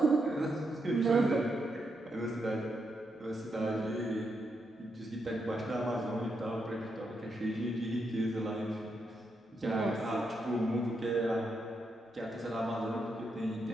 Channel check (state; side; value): normal; both; correlation 0.82